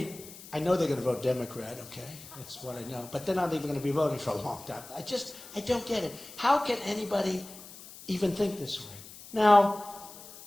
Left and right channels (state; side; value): noise; left; hiss, 16 dB below the sound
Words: I know they're going to vote Democrat, okay? That's what I know. But they're not even going to be voting for a long time. I don't get it. How can anybody even think this way. Now,